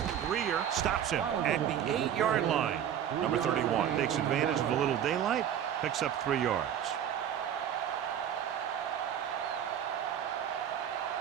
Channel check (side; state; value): left; quieter; 9.6 dB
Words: Greer stops him at the 8-yard line. Number 31 takes advantage of a little daylight, picks up 3 yards.